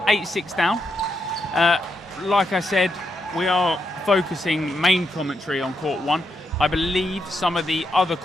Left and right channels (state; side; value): normal; both; correlation 0.81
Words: 8-6 down. Like I said, we are focusing main commentary on court 1. I believe some of the other